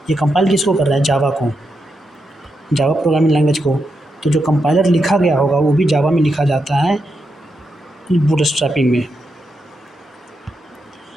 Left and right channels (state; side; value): normal; both; correlation 0.84